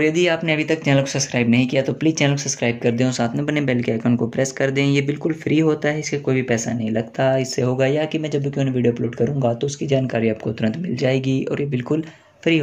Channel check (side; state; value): both; identical; correlation 1.00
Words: यदि आपने अभी तक चैनल को सब्सक्राइब नहीं किया तो प्लीज़ चैनल को सब्सक्राइब कर दें और साथ में बने बेल के आइकन को प्रेस कर दें। ये बिल्कुल फ्री होता है, इसके कोई भी पैसा नहीं लगता। इससे होगा या कि मैं जब भी कोई वीडियो अपलोड करूँगा तो उसकी जानकारी आपको तुरंत मिल जाएगी और ये बिल्कुल फ्री